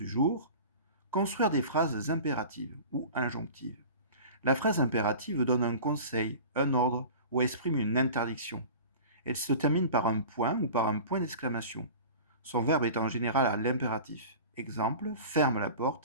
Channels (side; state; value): both; inverted; correlation -0.38